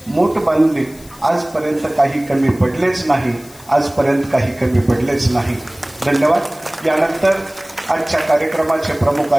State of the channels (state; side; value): noise; left; hiss, 23 dB below the sound